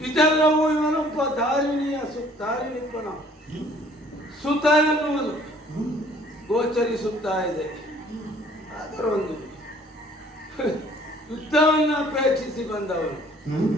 ಇದೆಲ್ಲವೂ ಇವನೊಬ್ಬ ಧಾರಿಣಿಪನ ಸುತ ಎನ್ನುವುದು ಗೋಚರಿಸುತ್ತಾ ಇದೆ. ಅದರೊಂದು ಯುದ್ಧವನ್ನು ಅಪೇಕ್ಷಿಸಿ ಬಂದವನು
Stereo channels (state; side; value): normal; both; correlation 0.56